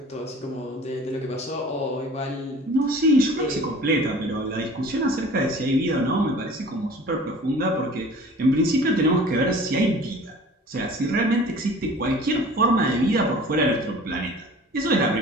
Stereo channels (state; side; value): normal; both; correlation 0.45